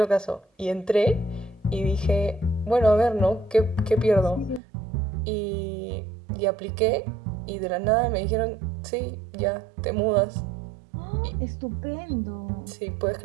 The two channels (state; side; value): drops out; left; at 4.6 s